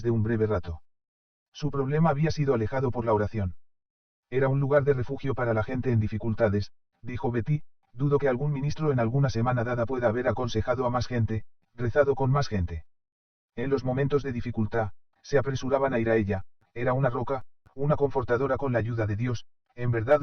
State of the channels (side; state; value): both; identical; correlation 1.00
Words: de un breve rato. Su problema había sido alejado por la oración. Era un lugar de refugio para la gente en dificultades, dijo Betty, dudo que algún ministro en alguna semana dada pueda haber aconsejado a más gente, rezado con más gente. En los momentos de dificultad, se apresuraban a ir a ella, era una roca, una confortadora con la ayuda de Dios, en verdad